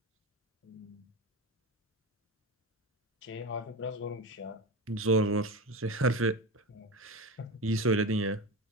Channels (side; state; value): both; normal; correlation 0.23